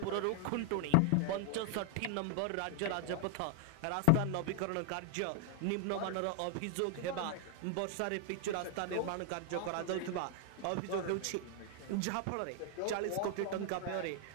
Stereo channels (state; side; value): different; both; correlation 0.00